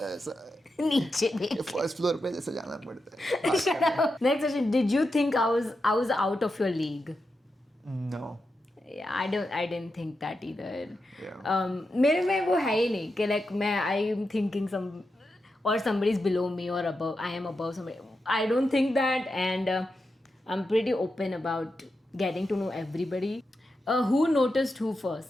नीचे देख. First floor पे जैसे जाना पड़ता है. Shut up. Next question. Did you think I was out of your league? No. Yeah, I didn't think that either. Yeah. मेरे में वो है ही नहीं कि like मैं I am thinking or somebody is below me or above. I am above somebody. I don't think that, and I'm pretty open about getting to know everybody. Who noticed who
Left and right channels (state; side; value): normal; both; correlation 0.88